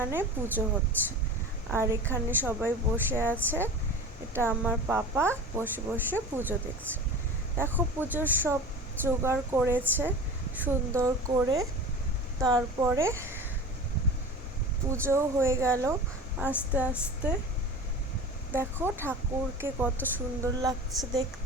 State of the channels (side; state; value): both; normal; correlation 0.34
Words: পুজো হচ্ছে। আর এখানে সবাই বসে আছে। এটা আমার পাপা বসে বসে পুজো দেখছে। দেখো পুজোর সব জোগাড় করেছে সুন্দর করে। তারপরে পুজো হয়ে গেল আস্তে আস্তে। দেখো ঠাকুরকে কত সুন্দর লাগছে